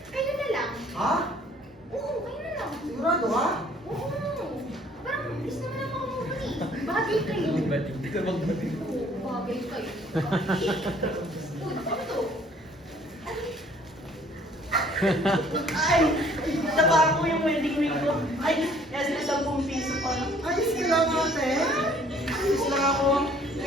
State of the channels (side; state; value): both; normal; correlation 0.58